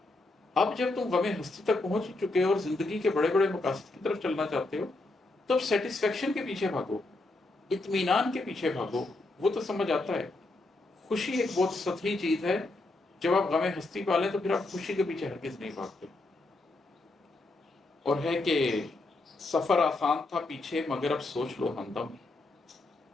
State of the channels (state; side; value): quieter; right; 3.0 dB